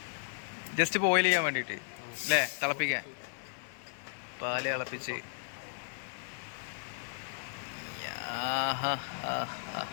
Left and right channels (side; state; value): right; silent; digital silence